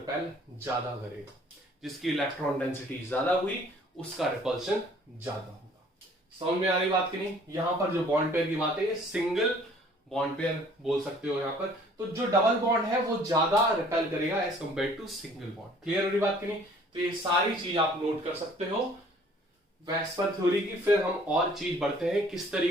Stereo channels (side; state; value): both; normal; correlation 0.55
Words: ज्यादा करेगा, जिसकी इलेक्ट्रॉन डेंसिटी ज्यादा हुई उसका रिपल्शन ज्यादा होगा। समझ में आ रही बात की नहीं? यहां पर जो बॉन्ड पेयर की बात है, ये सिंगल बॉन्ड पेयर बोल सकते हो यहां पर, तो जो डबल बॉन्ड है वो ज्यादा रिपेल करेगा as compared to single bond. Clear हो रही बात की नहीं? तो ये सारी चीज आप नोट कर सकते हो वेस्पर थ्योरी की। फिर हम और चीज बढ़ते हैं, किस